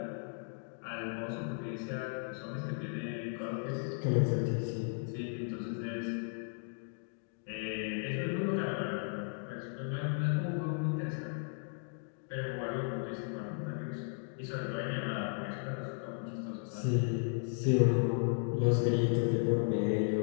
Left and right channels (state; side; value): silent; right; 54 dB below the other